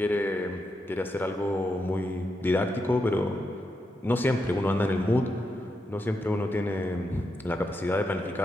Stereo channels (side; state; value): both; normal; correlation 0.84